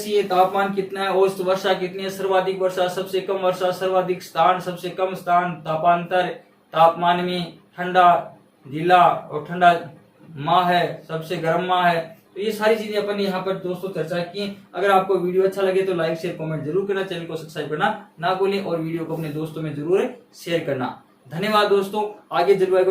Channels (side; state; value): both; identical; correlation 1.00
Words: है, तापमान कितना है, औसत वर्षा कितनी है, सर्वाधिक वर्षा, सबसे कम वर्षा, सर्वाधिक स्थान, सबसे कम स्थान, तापांतर, तापमान में, ठंडा जिला और ठंडा माह है, सबसे गर्म माह है। तो ये सारी चीजें अपन ने यहाँ पर दोस्तों चर्चा की। अगर आपको वीडियो अच्छा लगे तो लाइक शेयर कमेंट जरूर करना, चैनल को सब्सक्राइब करना ना भूलें और वीडियो को अपने दोस्तों में जरूर शेयर करना। धन्यवाद दोस्तों। आगे जलवायु